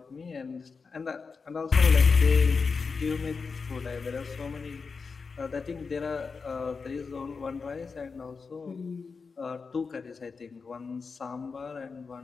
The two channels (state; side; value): quieter; right; 4.9 dB